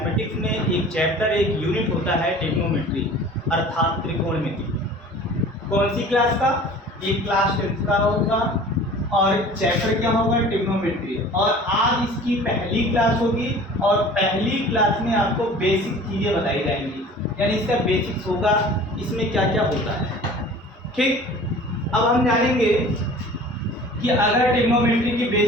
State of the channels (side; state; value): both; normal; correlation 0.44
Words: में एक चैप्टर एक यूनिट होता है ट्रिग्नोमेट्री अर्थात त्रिकोणमिति। कौन सी क्लास का? एक क्लास 10th का होगा और चैप्टर क्या होगा? ट्रिग्नोमेट्री। और आज इसकी पहली क्लास होगी और पहली क्लास में आपको बेसिक चीज़ें बताई जाएंगी, यानी इसका बेसिक्स होगा, इसमें क्या क्या होता है। ठीक, अब हम जानेंगे कि अगर ट्रिग्नोमेट्री की